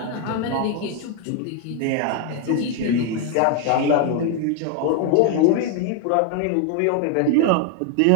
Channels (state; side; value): different; both; correlation 0.01